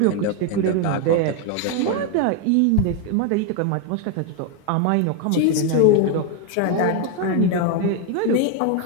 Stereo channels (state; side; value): different; both; correlation 0.01